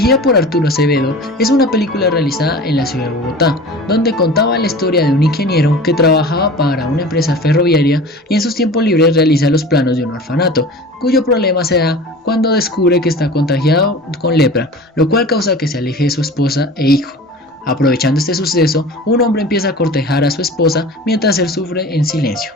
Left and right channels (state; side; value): normal; both; correlation 0.38